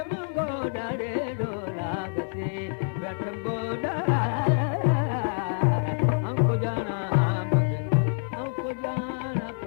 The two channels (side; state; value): right; silent; 60 dB below the other